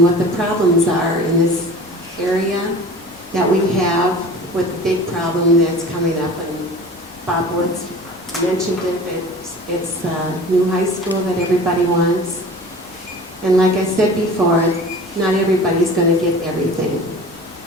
what the problems are in this area that we have with the big problem that's coming up. And Bob Woods mentioned it, it's a new high school that everybody wants. And like I said before, not everybody's going to get everything.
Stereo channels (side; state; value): both; normal; correlation 0.40